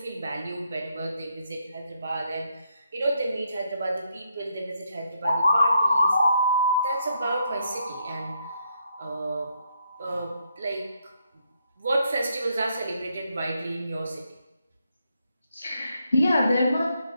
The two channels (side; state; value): both; inverted; correlation -0.77